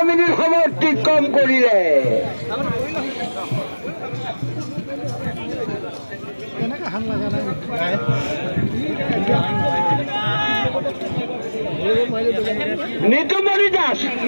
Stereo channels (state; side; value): inverted; both; correlation -1.00